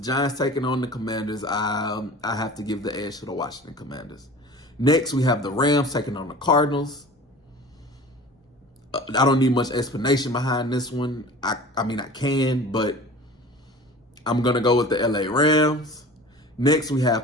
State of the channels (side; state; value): both; normal; correlation 0.40